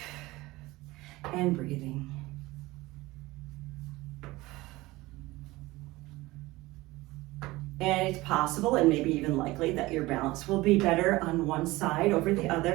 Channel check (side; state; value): left; quieter; 19.9 dB